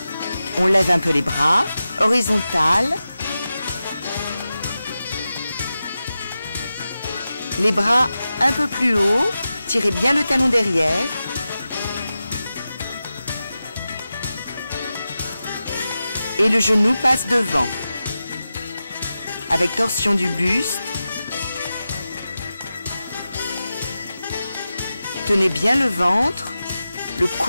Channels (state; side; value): inverted; both; correlation -0.93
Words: On lève un peu les bras, horizontal. Les bras un peu plus haut, tirez bien le talon derrière. Et le genou passe devant. Avec torsion du buste. Tenez bien le ventre, le